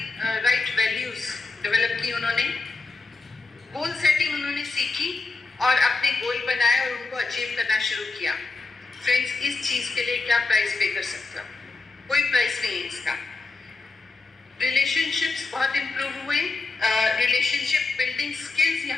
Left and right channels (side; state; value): right; quieter; 3.8 dB